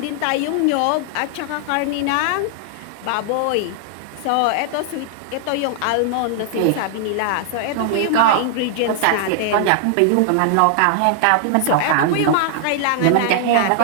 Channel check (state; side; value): different; both; correlation -0.01